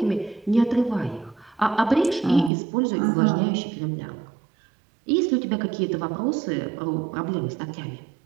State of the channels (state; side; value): drops out; left; at 2.5 s